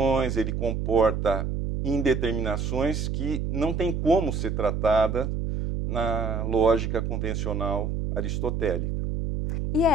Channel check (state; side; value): noise; right; hum, 1 dB below the sound